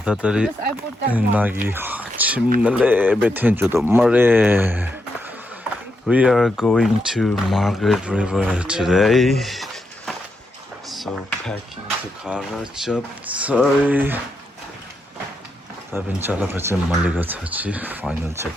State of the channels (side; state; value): both; normal; correlation 0.82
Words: 다들이 나기 침날래 베텐조도 말해. We are going to Margaret River today. So packing the car up. Sorry. 다빈 잘라가지 말리가 차지. 파이널